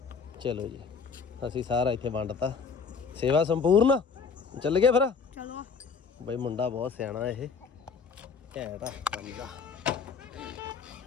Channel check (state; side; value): quieter; right; 5.6 dB